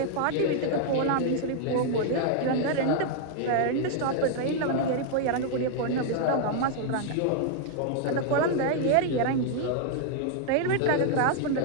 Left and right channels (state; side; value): different; both; correlation 0.00